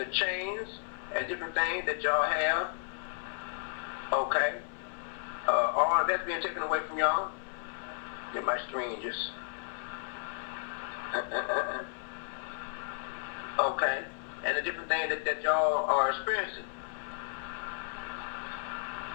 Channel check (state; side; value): silent; right; 56 dB below the other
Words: chains and different things that y'all have, okay, all of that's being taken away from y'all. Get my screen just, okay, and the different things that y'all are experiencing.